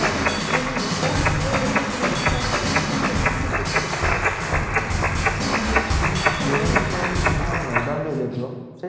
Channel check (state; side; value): identical; both; correlation 1.00